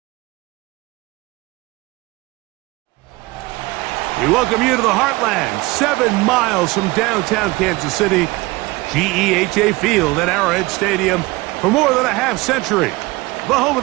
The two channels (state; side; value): quieter; left; 22.0 dB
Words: We welcome you to the Heartland, 7 miles from downtown Kansas City, GEHA Field at Arrowhead Stadium for more than a half-century, the home